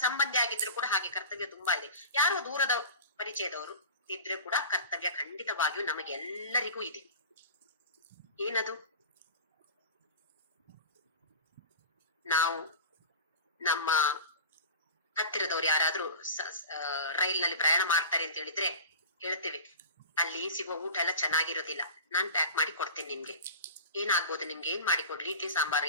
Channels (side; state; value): both; inverted; correlation -0.35